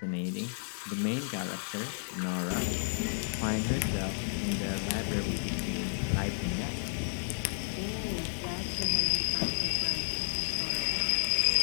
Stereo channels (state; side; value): silent; right; digital silence